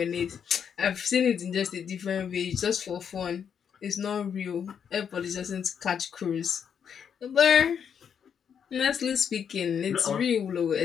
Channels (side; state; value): right; quieter; 7.7 dB